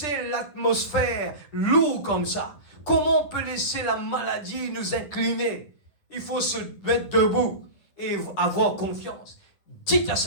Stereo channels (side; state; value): right; late; 10 ms